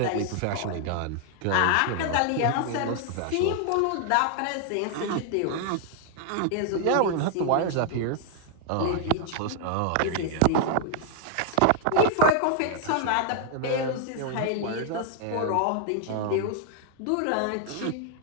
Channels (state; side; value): different; both; correlation 0.00